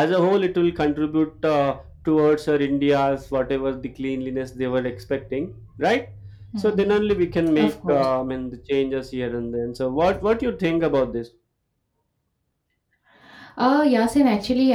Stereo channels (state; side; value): identical; both; correlation 1.00